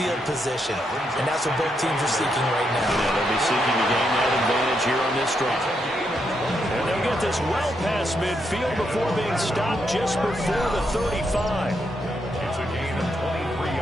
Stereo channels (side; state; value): both; normal; correlation 0.80